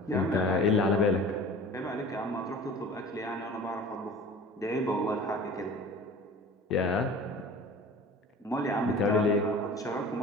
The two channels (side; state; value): both; normal; correlation 0.41